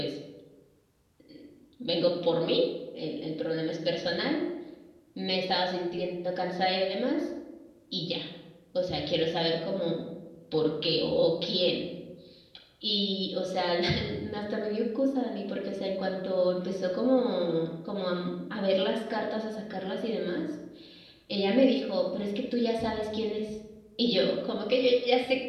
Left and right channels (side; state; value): both; identical; correlation 1.00